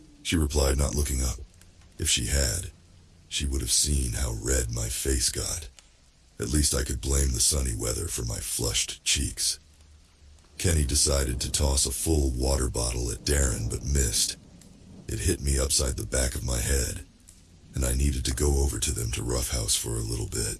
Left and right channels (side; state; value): both; identical; correlation 1.00